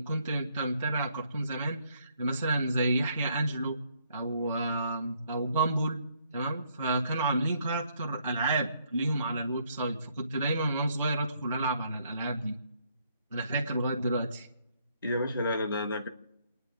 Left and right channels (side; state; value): both; inverted; correlation -0.69